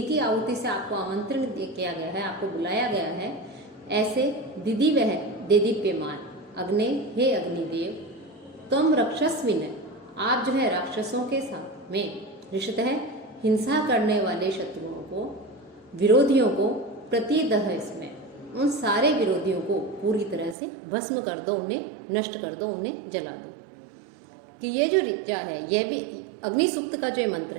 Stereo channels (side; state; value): left; drops out; at 20.6 s